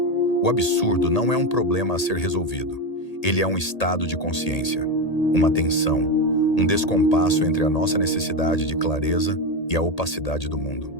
o absurdo não é um problema a ser resolvido. Ele é um estado de consciência, uma tensão, um descompasso entre a nossa necessidade de clareza e a opacidade do mundo.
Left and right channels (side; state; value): right; late; 1.8 ms